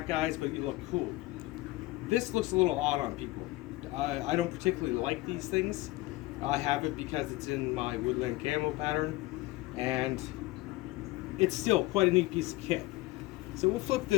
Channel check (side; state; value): right; quieter; 19.3 dB